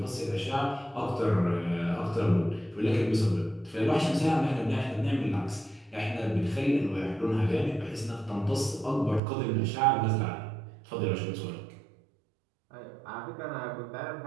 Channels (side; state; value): left; drops out; at 9.2 s